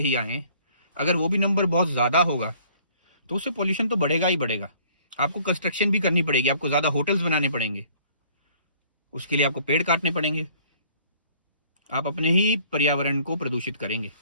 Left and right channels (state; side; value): inverted; both; correlation -0.56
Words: आएँ। अगर वो भी नंबर बहुत ज़्यादा होगा तो उससे पोल्यूशन तो बढ़ेगा ही बढ़ेगा। आपको कंस्ट्रक्शन भी करनी पड़ेगी, आपको ज़्यादा होटल्स बनाने पड़ेंगे, उसके लिए आपको पेड़ काटने पड़ेंगे। आप अपने ही पर्यावरण को प्रदूषित करेंगे।